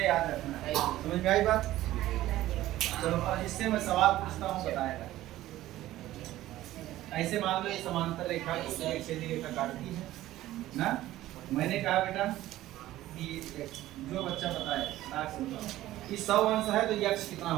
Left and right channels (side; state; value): left; quieter; 15.1 dB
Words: याद रखना है, समझ में आई बात। चलो अब इससे मैं सवाल पूछता हूँ, बताएगा। ऐसे मान लो ये समांतर रेखा को एक सीधी रेखा काटती है ना। मैंने कहा बेटा कि जो बच्चा बताए ताक से बताओ कि 100 अंश है तो यक्ष कितना